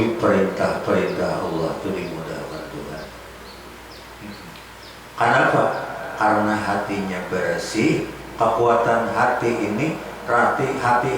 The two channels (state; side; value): identical; both; correlation 1.00